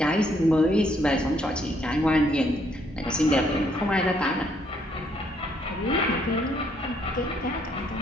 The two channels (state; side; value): normal; both; correlation 0.70